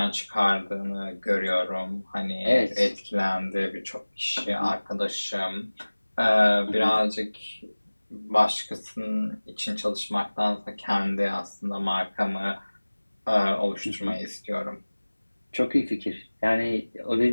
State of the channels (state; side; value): inverted; both; correlation -1.00